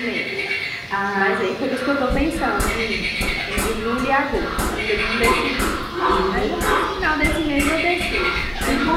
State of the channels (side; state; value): both; identical; correlation 1.00